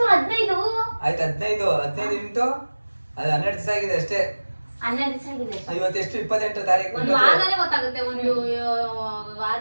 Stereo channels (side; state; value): both; inverted; correlation -1.00